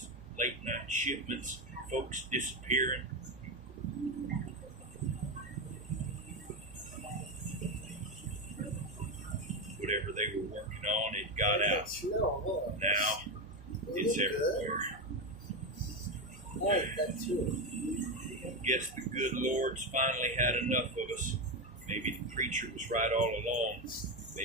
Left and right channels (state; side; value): normal; both; correlation 0.13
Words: late night shipments, folks disappearing. Whatever they were working on, it got out. Now, it's everywhere. Guess the good Lord's finally had enough of us. Maybe the preacher was right all along.